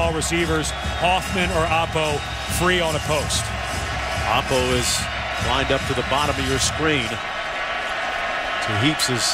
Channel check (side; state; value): both; identical; correlation 1.00